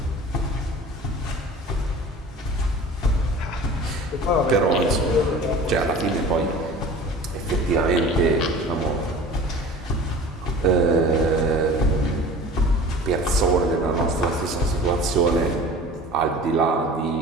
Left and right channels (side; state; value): both; normal; correlation 0.41